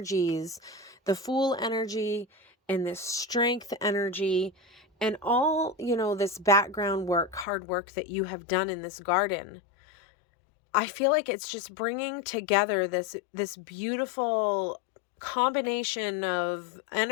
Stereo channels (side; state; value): right; drops out; at 7.5 s